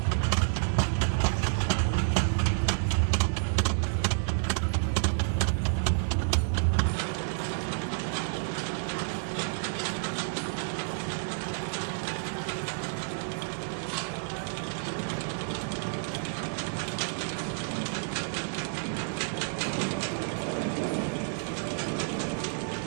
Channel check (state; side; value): silent; left; digital silence